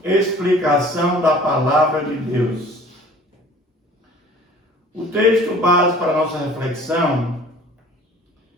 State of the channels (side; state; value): both; normal; correlation 0.49